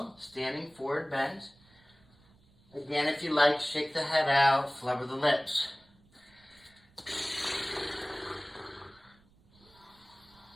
standing forward bend. Again, if you like, shake the head out, flubber the lips.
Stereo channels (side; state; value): right; noise; rumble, 30 dB below the sound